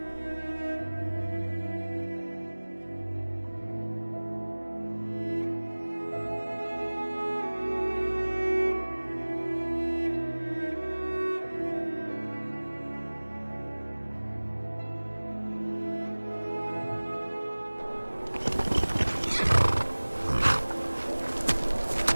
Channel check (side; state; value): both; inverted; correlation -1.00